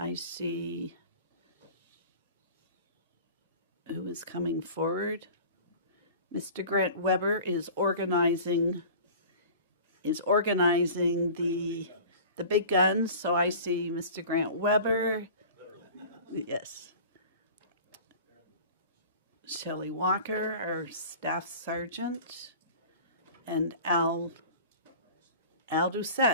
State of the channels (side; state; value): both; inverted; correlation -0.41